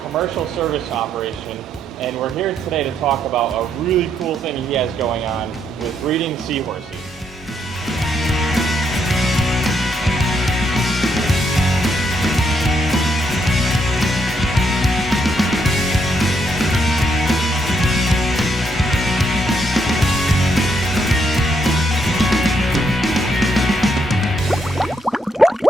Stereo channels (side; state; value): both; normal; correlation 0.75